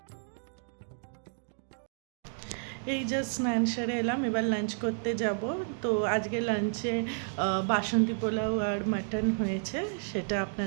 এই জাস্ট স্নান সেরে এলাম, এবার লাঞ্চ করতে যাব। তো আজকে লাঞ্চে বাসন্তী পোলাও আর মাটন হয়েছে, সেটা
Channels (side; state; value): left; silent; 57 dB below the other